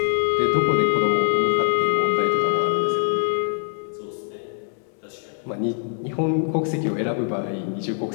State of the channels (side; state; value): right; silent; 63 dB below the other